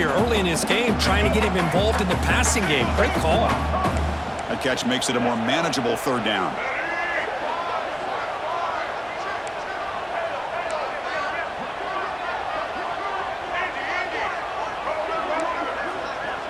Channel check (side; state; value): both; identical; correlation 1.00